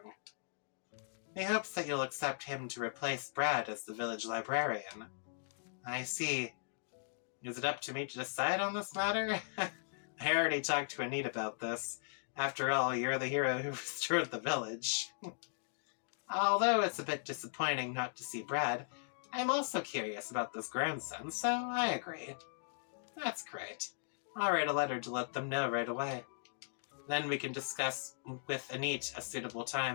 He hopes that you'll accept him to replace Brad as the village librarian. I see. Is it up to me to decide on this matter? I already talked to Anita about this. After all, you're the hero who restored the village. Although it's a bit disappointing not to see Brad, I'm also curious about this grandson, so I agree. That's great. I'll write a letter to let them know right away. Then we can discuss with Anita a suitable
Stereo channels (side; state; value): right; silent; digital silence